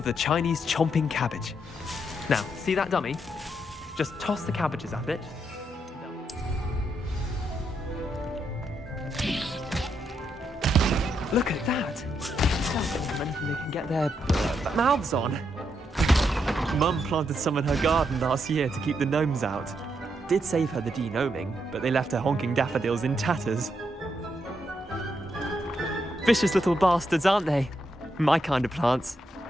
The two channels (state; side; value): normal; both; correlation 0.79